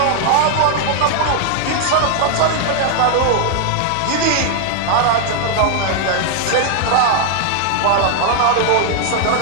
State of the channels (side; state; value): both; different; correlation 0.00